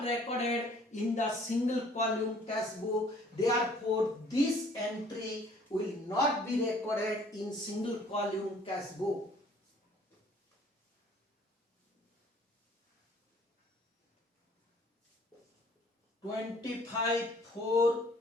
recorded in the single column cash book. Therefore, this entry will not be recorded in single column cash book. $25, $4,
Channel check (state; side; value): normal; both; correlation 0.57